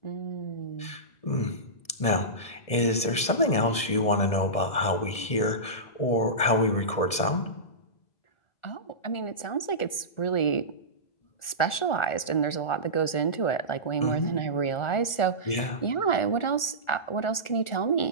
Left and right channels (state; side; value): late; right; 1.4 ms